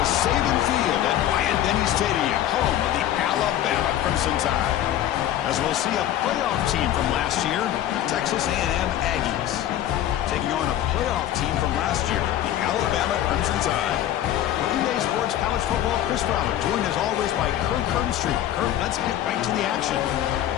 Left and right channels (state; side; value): quieter; right; 12.1 dB